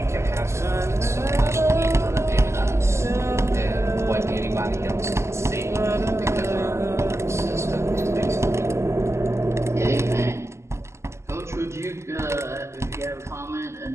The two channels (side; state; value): left; late; 0.13 ms